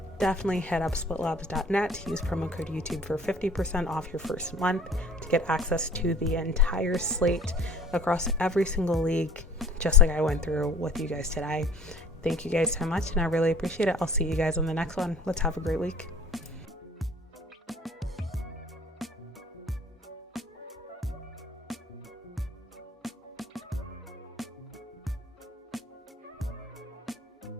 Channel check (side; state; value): both; normal; correlation 0.50